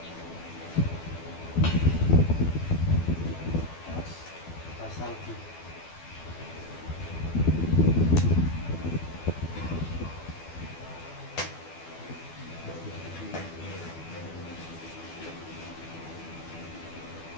Terus Pasal di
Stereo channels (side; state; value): right; late; 12 ms